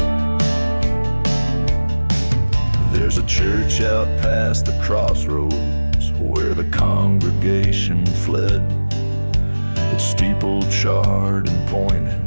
There's a church out past the crossroads where the congregation fled. Its steeple charred and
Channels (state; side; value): inverted; both; correlation -1.00